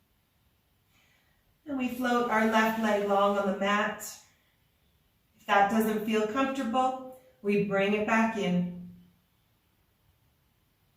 And we float our left leg long on the mat. If that doesn't feel comfortable, we bring it back in.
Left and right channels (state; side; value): identical; both; correlation 1.00